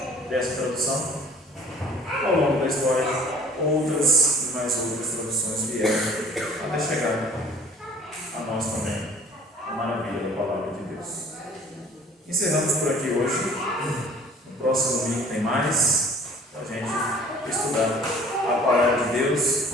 dessa tradução, ao longo da história, outras e mais outras traduções vieram até chegar a nós também. A maravilha da palavra de Deus. Encerramos por aqui hoje. No próximo domingo tem mais para a gente estudar a palavra de Deus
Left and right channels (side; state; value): both; normal; correlation 0.50